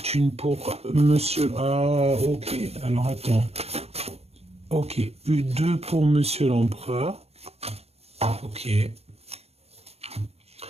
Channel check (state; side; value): late; left; 0.30 ms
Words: une pour monsieur... Ah, ok. Alors, attends. Ok. Deux pour monsieur l'empereur. Ok. Il